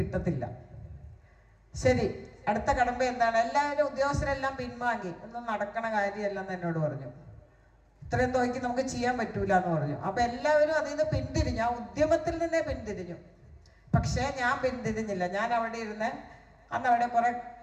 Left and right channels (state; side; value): identical; both; correlation 1.00